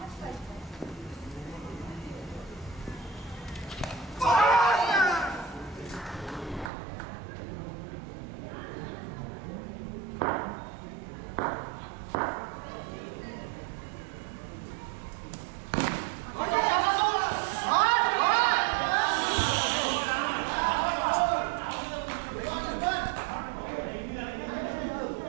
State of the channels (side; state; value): left; drops out; at 6.7 s